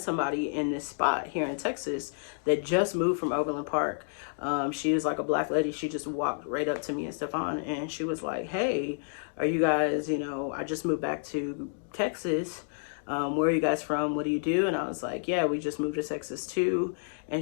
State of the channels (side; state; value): right; silent; digital silence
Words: somebody in this spot here in Texas that just moved from Overland Park. She was like a black lady. She just walked right up to me and Stefan, and she was like, "Hey, are you guys, I just moved back to Texas. Where are you guys from? What do you do?" And I was like, "Yeah, we just moved to Texas too."